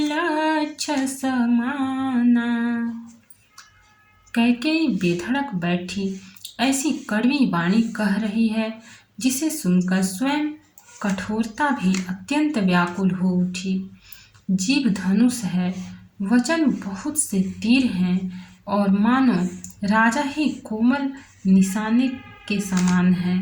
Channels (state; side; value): identical; both; correlation 1.00